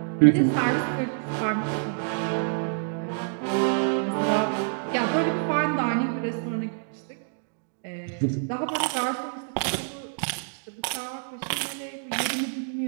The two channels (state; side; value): silent; left; digital silence